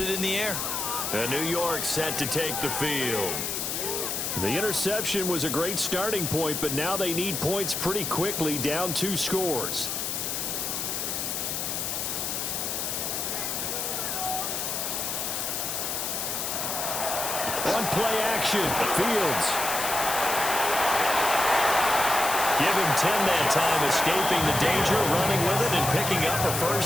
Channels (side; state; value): left; noise; hiss, 2 dB below the sound